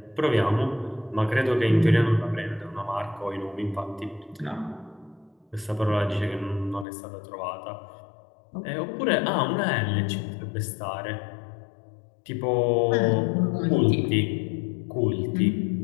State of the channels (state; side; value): drops out; right; at 6.9 s